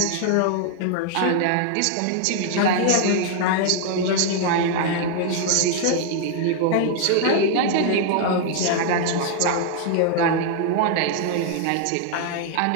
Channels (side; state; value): both; different; correlation 0.00